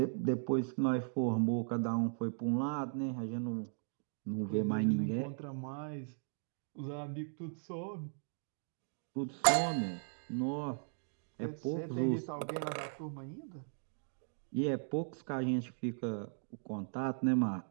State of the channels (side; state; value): left; silent; digital silence